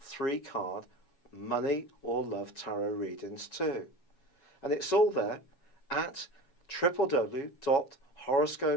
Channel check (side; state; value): right; late; 7.3 ms